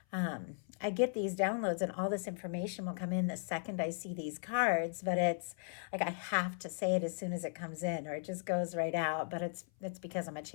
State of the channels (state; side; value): silent; right; 53 dB below the other